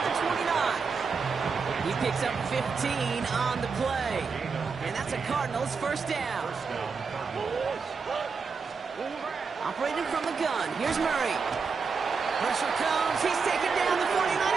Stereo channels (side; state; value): left; quieter; 5.2 dB